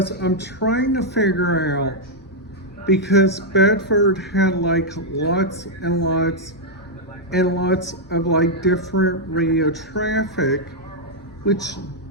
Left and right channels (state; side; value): normal; both; correlation -0.04